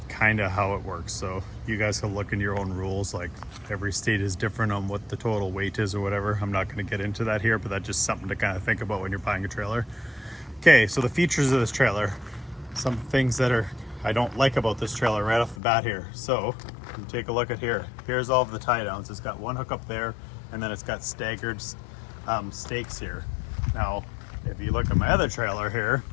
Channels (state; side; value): drops out; right; at 15.6 s